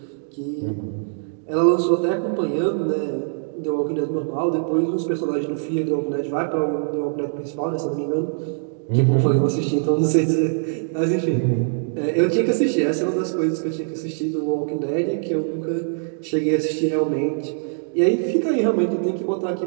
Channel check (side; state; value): left; silent; digital silence